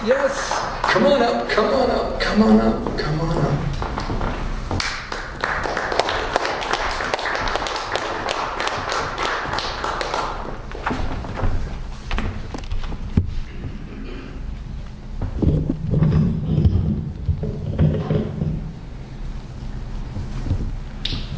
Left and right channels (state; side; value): identical; both; correlation 1.00